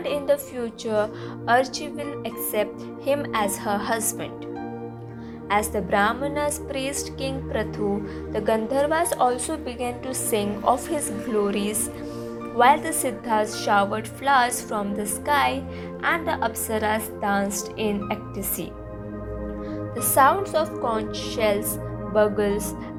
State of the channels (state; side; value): identical; both; correlation 1.00